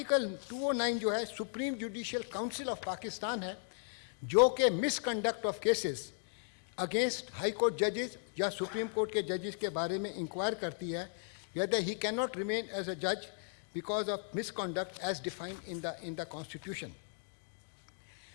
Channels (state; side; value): silent; right; digital silence